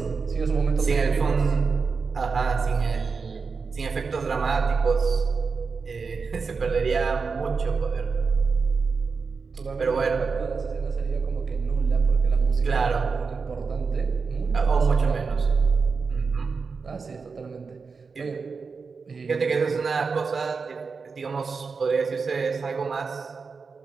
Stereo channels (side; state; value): left; quieter; 4.9 dB